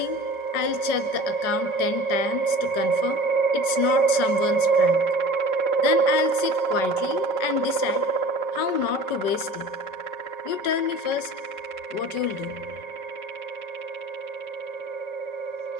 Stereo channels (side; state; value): right; late; 5.4 ms